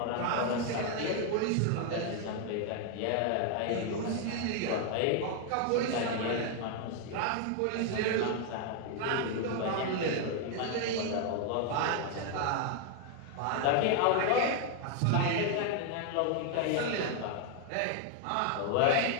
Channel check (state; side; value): different; both; correlation 0.00